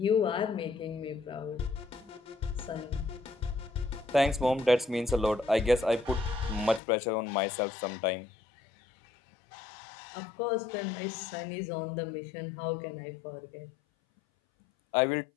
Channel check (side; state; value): right; drops out; at 6.8 s